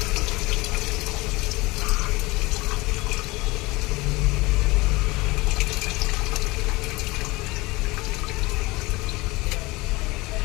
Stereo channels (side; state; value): right; quieter; 22.5 dB